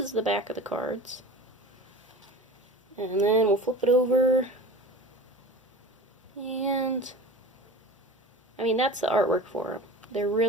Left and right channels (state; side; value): normal; both; correlation 0.36